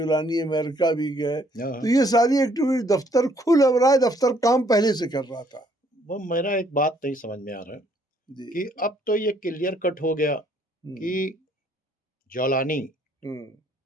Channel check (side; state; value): both; normal; correlation 0.65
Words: अमेरिका भी गए, तो ये सारी एक्टिविटी, दफ्तर खुल अब रहा है, दफ्तर काम पहले से कर रहा था। वो मेरा एक बात नहीं समझ में आ रहा है कि अब तो ये क्लियर कट हो गया कि जोलानी,